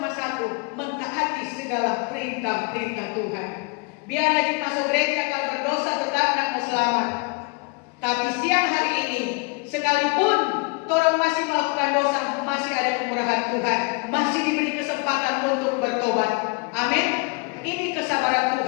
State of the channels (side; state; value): right; quieter; 30.6 dB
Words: satu, mentaati segala perintah-perintah Tuhan. Biar lagi masuk gereja kalau berdosa tetap tidak mau selamat. Tapi siang hari ini, sekalipun orang masih melakukan dosa, masih ada kemurahan Tuhan, masih diberi kesempatan untuk bertobat. Amin. Ini kesabaran